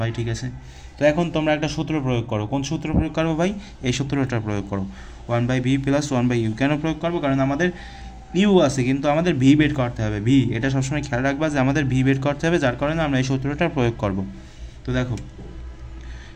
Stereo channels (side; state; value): both; identical; correlation 1.00